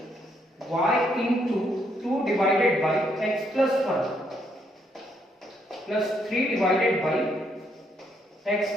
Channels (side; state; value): both; normal; correlation 0.73